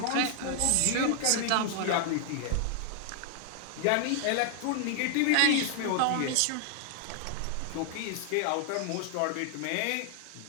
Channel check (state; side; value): different; both; correlation 0.00